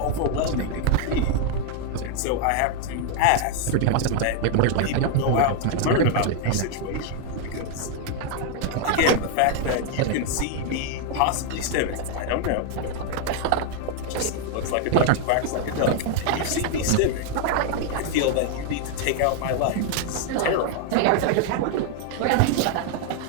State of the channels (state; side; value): different; both; correlation 0.00